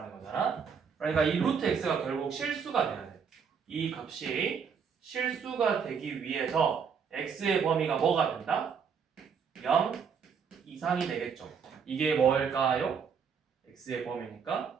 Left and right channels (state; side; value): quieter; left; 6.5 dB